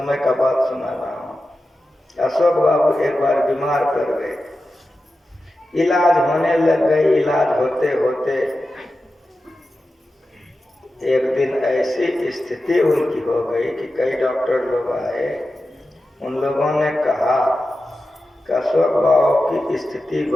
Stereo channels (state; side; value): normal; both; correlation 0.92